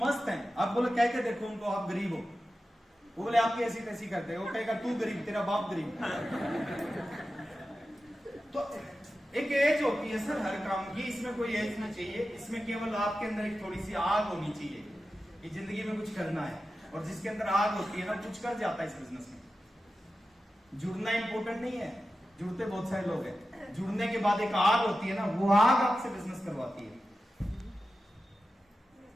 है, आप बोले कह के देखो उनको आप गरीब हो, वो बोले आपकी ऐसी तैसी करते हैं। वो कहेगा तू गरीब, तेरा बाप गरीब। तो एक एज होती है सर हर काम की, इसमें कोई एज नहीं चाहिए। इसमें केवल आपके अंदर एक थोड़ी सी आग होनी चाहिए कि जिंदगी में कुछ करना है। और जिसके अंदर आग होती है ना, कुछ कर जाता है इस बिजनेस में। जुड़ना इंपॉर्टेंट नहीं है, जुड़ते बहुत सारे लोग हैं। जुड़ने के बाद एक आग होती है ना, वो आग आपसे बिजनेस करवाती है।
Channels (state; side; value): normal; both; correlation 0.93